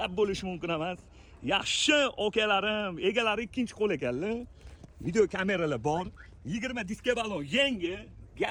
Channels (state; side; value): identical; both; correlation 1.00